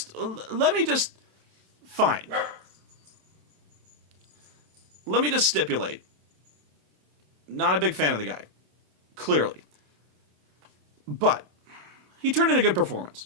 Let me just stipulate. Not a big fan of the guy. Clearly. But he turned in a good performance.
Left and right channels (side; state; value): left; late; 27 ms